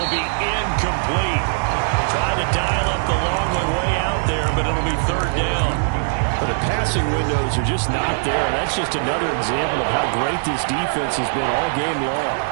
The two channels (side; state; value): left; silent; 65 dB below the other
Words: be incomplete. Tried to dial up the long one way out there, but it'll be 3rd down. But the passing windows are just not there, and that's just another example of how great this defense has been all game long.